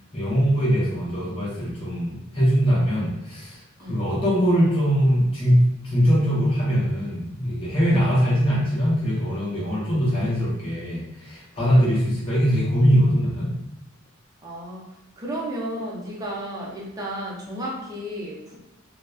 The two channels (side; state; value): both; normal; correlation 0.85